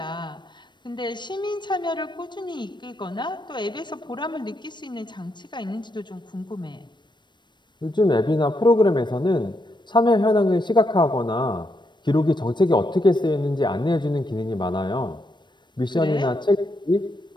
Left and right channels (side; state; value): right; late; 0.22 ms